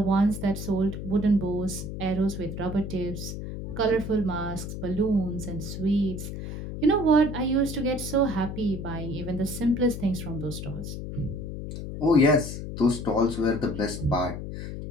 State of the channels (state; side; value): noise; left; hum, 7 dB below the sound